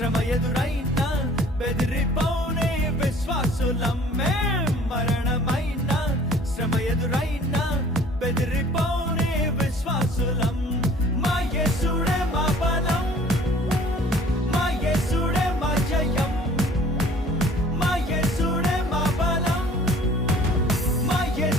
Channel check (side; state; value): both; normal; correlation 0.51